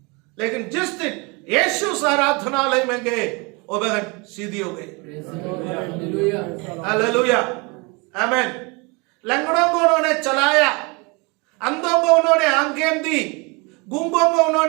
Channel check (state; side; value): quieter; left; 28.6 dB